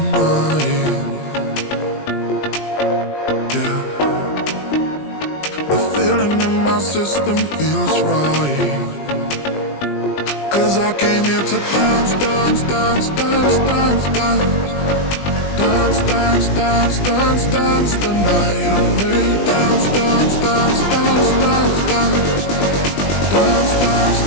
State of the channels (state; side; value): late; right; 20 ms